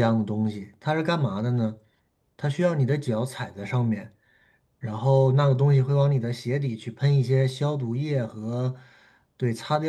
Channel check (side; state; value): both; identical; correlation 1.00